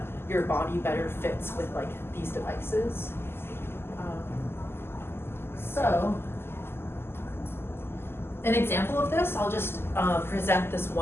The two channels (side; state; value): right; late; 0.12 ms